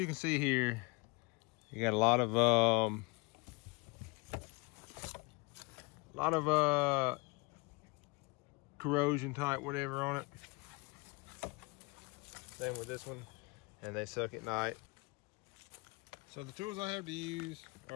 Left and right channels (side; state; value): right; quieter; 27.3 dB